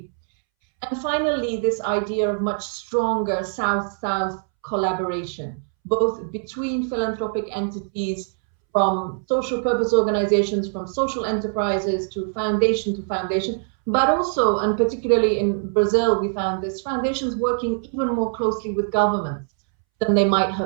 And finally, this idea of much stronger South-South collaboration, both between philanthropic entities, from social purpose organizations, from social enterprises to foundation, But also, and particularly in Brazil, we found this, foundations working even more closely with governments than they might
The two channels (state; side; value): silent; left; 64 dB below the other